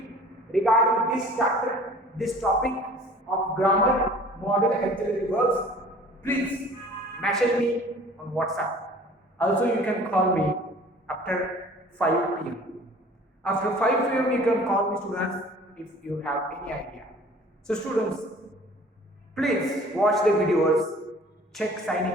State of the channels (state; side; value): normal; both; correlation 0.48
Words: regarding this chapter, this topic of grammar, model, auxiliary verbs, please message me on WhatsApp. Also, you can call me after 5 p.m. After 5 p.m., you can call me, students, if you have any idea. So, students, please watch the videos, check Sai